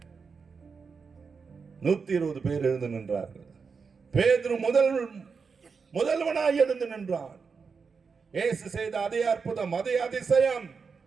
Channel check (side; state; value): left; quieter; 5.3 dB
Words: 120 பேர் எழுந்து நின்றார்கள். பேதுரு முதல்வனாய் எழுந்து நின்றான். இயேசு செய்த அதே அற்புதம், அதே அதிசயம்,